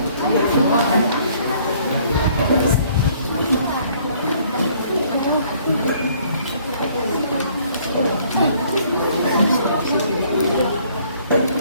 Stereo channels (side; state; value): both; inverted; correlation -0.61